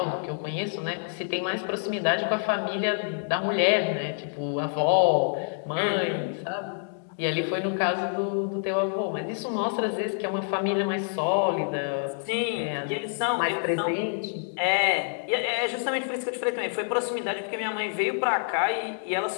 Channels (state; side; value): silent; right; digital silence